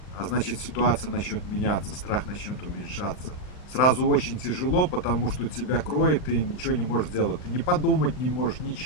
а значит ситуация начнет меняться, страх начнет уменьшаться. Сразу очень тяжело, потому что тебя кроет, ты ничего не можешь делать. Ты не подумать не можешь,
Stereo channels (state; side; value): late; right; 39 ms